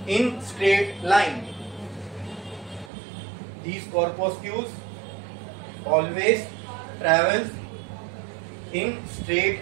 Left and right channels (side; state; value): left; drops out; at 2.9 s